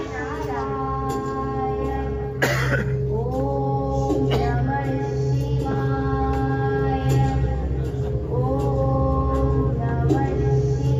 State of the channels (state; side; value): identical; both; correlation 1.00